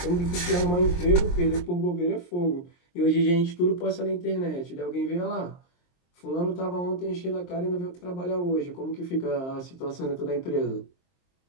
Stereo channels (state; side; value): late; right; 23 ms